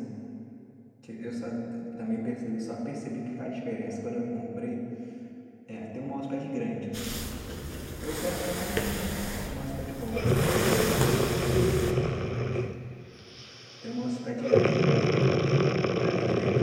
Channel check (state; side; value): identical; both; correlation 1.00